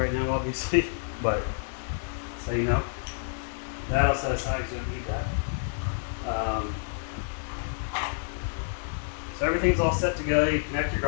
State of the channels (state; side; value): silent; right; 59 dB below the other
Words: right now, obviously, but so you know. That I'll set aside because you don't need that. So everything's all set to go. You connect your